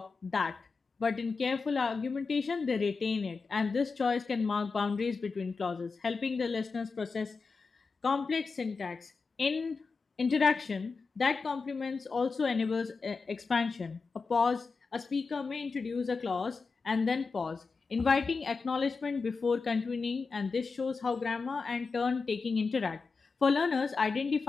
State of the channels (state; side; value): quieter; right; 4.6 dB